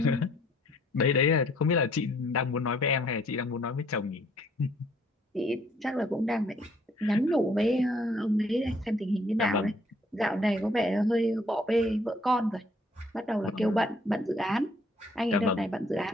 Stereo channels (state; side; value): normal; both; correlation 0.63